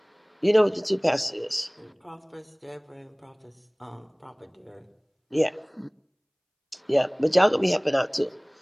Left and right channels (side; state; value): both; identical; correlation 1.00